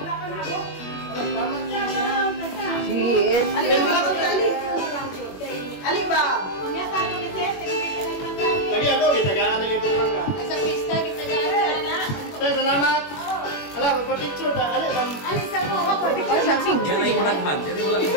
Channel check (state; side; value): late; right; 21 ms